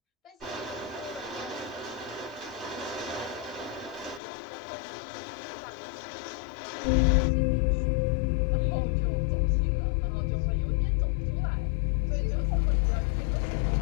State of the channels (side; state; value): right; drops out; at 4.2 s